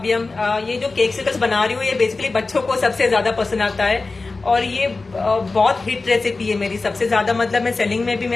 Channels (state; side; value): quieter; right; 3.7 dB